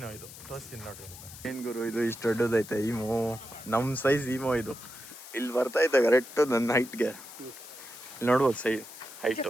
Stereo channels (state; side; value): noise; left; hiss, 15 dB below the sound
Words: ಇದು, ತೋರಿಸ್ತೀನಿ ನೋಡ್ರಿ. ಏನ್ ಗುರು ಇದು ಇಷ್ಟು ದೊಡ್ಡದೈತೆ ಈಮೋ, ನಮ್ಮ ಸೈಜ್ ಈಮೋ ಇದು. ಇಲ್ಲಿ ಬರ್ತಾ ಐತೆ ಕರೆಕ್ಟು ನನ್ನ ಹೈಟ್ಗೆ. ಇಲ್ಲಿ ನೋಡ್ಬೋದು ಸೈಜ್